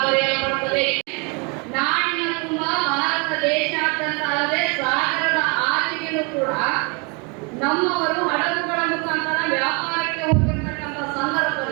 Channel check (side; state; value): left; quieter; 32.2 dB